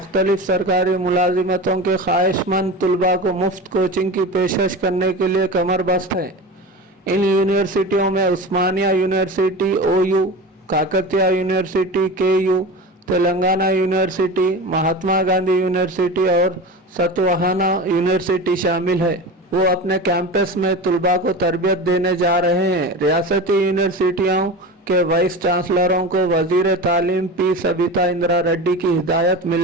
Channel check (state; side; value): normal; both; correlation 0.29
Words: सरकारी मुलाजिमतों के ख्वाहिशमंद तलबा को मुफ्त कोचिंग की पेशकश करने के लिए कमरबस्त हैं। इन यूनिवर्सिटियों में Osmania university OU, Kakatiya university KU, Telangana university, Mahatma Gandhi university और सतवाहाना यूनिवर्सिटी शामिल है। वो अपने कैंपस में तलबा को तरबियत देने जा रहे हैं। रियासती यूनिवर्सिटियों के वाइस चांसलरों को वजीर तालीम P सबिता इंदिरा रेड्डी की हिदायत